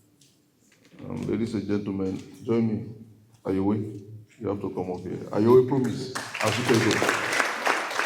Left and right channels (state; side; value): identical; both; correlation 1.00